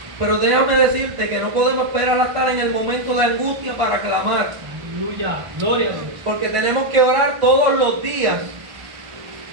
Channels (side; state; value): left; late; 1.5 ms